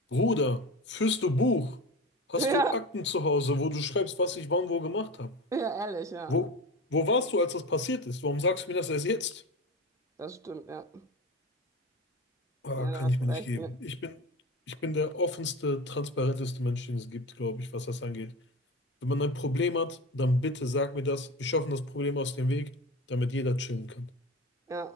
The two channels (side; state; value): both; normal; correlation 0.28